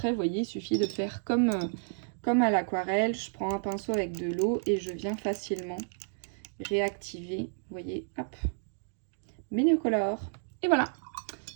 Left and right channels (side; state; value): left; silent; 57 dB below the other